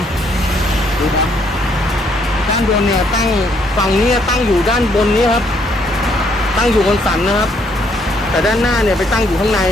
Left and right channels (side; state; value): both; normal; correlation 0.69